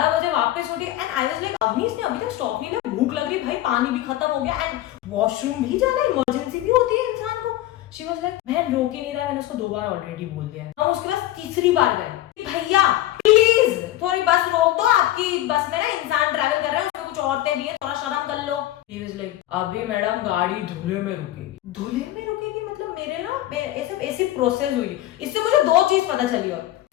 बजे वापस उठी and I was like, Avni इसने अभी तक स्टॉप नहीं लिया, भूख लग रही भाई, पानी भी खत्म हो गया एंड वॉशरूम भी जाना, इमरजेंसी भी होती है इंसान को. शी वाज लाइक, बहन रोक ही नहीं रहा. मैंने उसको 2 बार ऑलरेडी बोल दिया. हम उसके पास तीसरी बार गए, भैया प्लीज थोड़ी बस रोक दो, आपकी बस में ना इंसान ट्रैवल कर रहे हैं, उसमें कुछ औरतें भी है, थोड़ा शर्म कर लो. ही वाज लाइक, अभी मैडम गाड़ी धुले में रुकेगी. धुले में रुकेगी मतलब मेरे ना ऐसी प्रोसेस हुई. इससे मुझे 2 चीज पता चली. और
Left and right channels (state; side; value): quieter; right; 14.7 dB